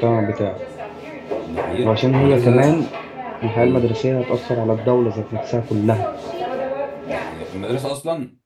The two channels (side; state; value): both; identical; correlation 1.00